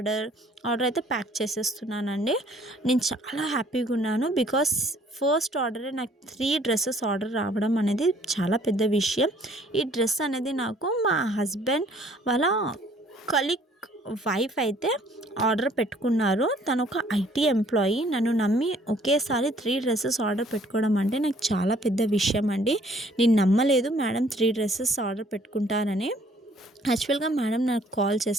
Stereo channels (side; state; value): both; normal; correlation 0.59